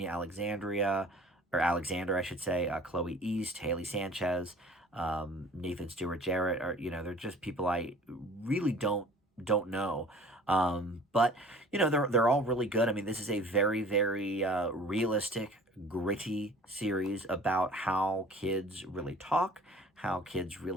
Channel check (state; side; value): normal; both; correlation 0.48